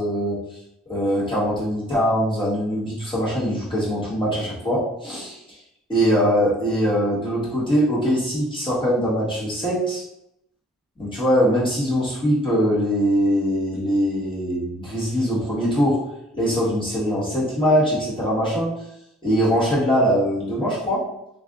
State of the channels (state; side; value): normal; both; correlation 0.57